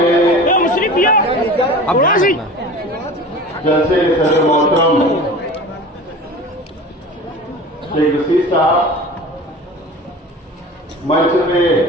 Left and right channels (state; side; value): normal; both; correlation 0.37